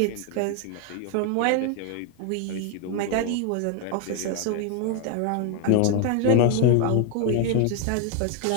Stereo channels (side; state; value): both; different; correlation 0.00